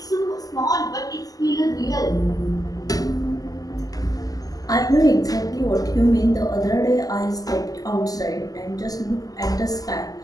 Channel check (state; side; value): late; right; 0.17 ms